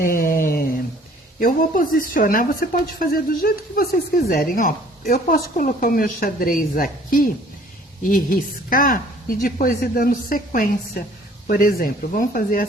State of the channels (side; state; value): both; normal; correlation 0.55